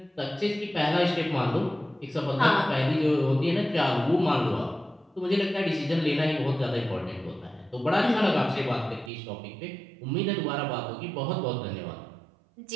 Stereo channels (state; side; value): drops out; left; at 9.1 s